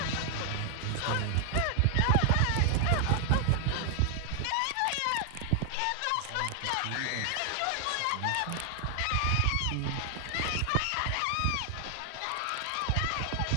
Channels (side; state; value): both; different; correlation 0.00